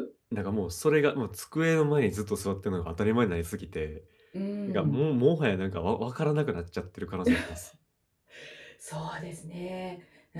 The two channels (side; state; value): both; identical; correlation 1.00